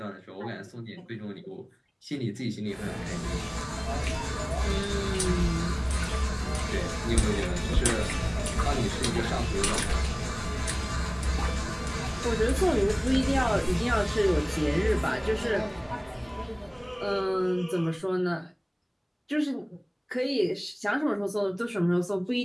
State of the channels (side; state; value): both; identical; correlation 1.00